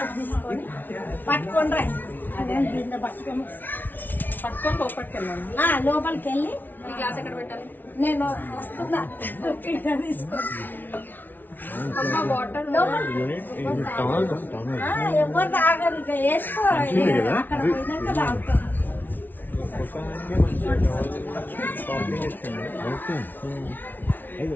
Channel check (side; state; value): right; late; 0.087 ms